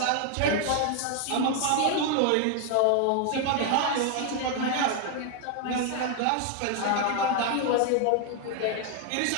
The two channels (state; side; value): different; both; correlation 0.00